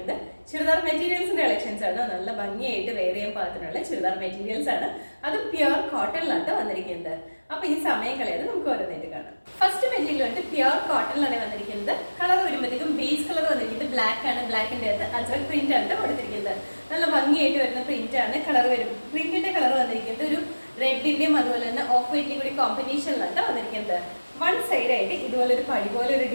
ചുരിദാർ മെറ്റീരിയൽസിന്റെ കളക്ഷൻസ് ആണ്. നല്ല ഭംഗിയായിട്ട് വെയർ ചെയ്യാൻ പാകത്തിനുള്ള ചുരിദാർ മെറ്റീരിയൽസ് ആണ്. അത് പ്യുർ കോട്ടണിലാണ് വന്നിരിക്കുന്നത്. അപ്പൊ ഈ സമയം കളയാതെ നമുക്ക് ഓരോന്നായിട്ട് കാണാം. ഫസ്റ്റ് മെറ്റീരിയൽ വന്നിട്ട് പ്യുർ കോട്ടണിലാണ് വന്നിരിക്കുന്നത്. കളർ വരുമ്പോഴത്തേക്കും ബേസ് കളർ വന്നിരിക്കുന്നത് ബ്ലാക്ക് ആണ്. ബ്ലാക്കിന്റെ അകത്ത് അജ്രക് പ്രിന്റ് ആണ് കൊടുത്തിരിക്കുന്നത്. നല്ല ഭംഗിയായിട്ട് വരുന്ന പ്രിന്റ് ആണ്. കളർ വരും, പ്രിന്റിന്റെ കളർ വന്നിരിക്കുന്നത് ഒരു റെഡിന്റെയും അതുപോലെ തന്നെ ഓഫ് വൈറ്റിന്റെയും കൂടി കോമ്പിനേഷനിലാണ് വന്നിരിക്കുന്നത്. വൺ സൈഡ് ആയിട്ട് ഇതുപോലെ ഒരു പടി പോലെ ഒരു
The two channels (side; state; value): both; inverted; correlation -1.00